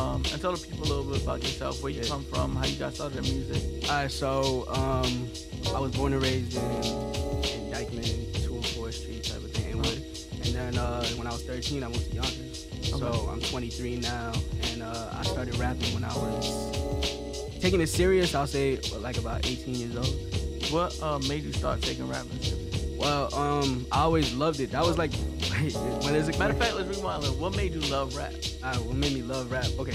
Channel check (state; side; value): identical; both; correlation 1.00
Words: tell the people a little bit about yourself, where you come from, how you got started in music. Alright, so I was born and raised in Dykeman, 204 Street type of thing, Inwood. And then when I was 13, I moved to Yonkers. Okay. So I'm 23 now, and I started rapping when I was taking it serious. I'll say like about 18 years old. What made you start taking rapping serious? Well, I always loved it. That was like, when is it? Matter of fact, let's rewind. What made you love rap? What made me love rap?